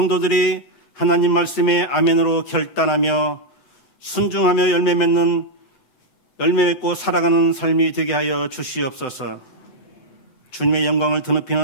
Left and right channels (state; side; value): late; right; 7.9 ms